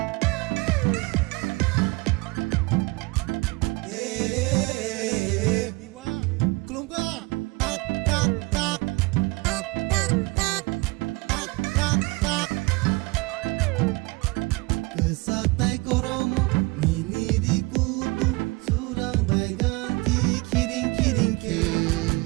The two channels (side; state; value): left; quieter; 25.1 dB